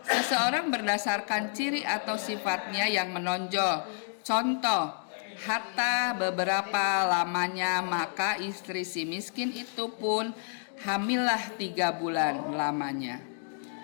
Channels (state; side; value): silent; right; digital silence